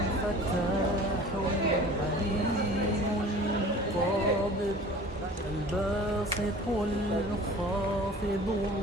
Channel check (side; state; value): both; normal; correlation 0.44